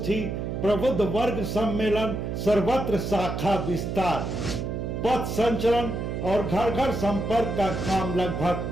प्रबुद्ध वर्ग सम्मेलन, सर्वत्र शाखा विस्तार। पथ संचलन और घर घर संपर्क का काम लगभग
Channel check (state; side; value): noise; right; hum, 3 dB below the sound